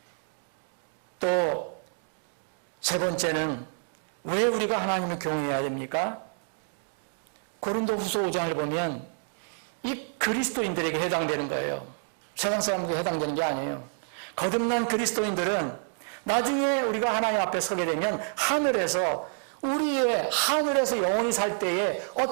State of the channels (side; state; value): left; silent; digital silence